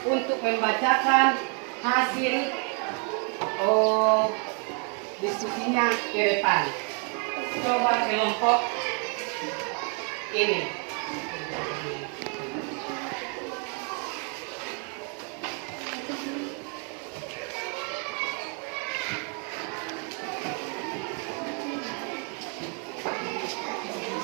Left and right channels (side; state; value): left; quieter; 39.2 dB